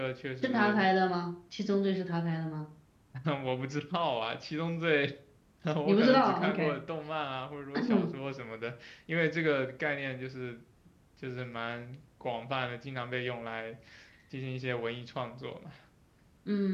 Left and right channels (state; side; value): identical; both; correlation 1.00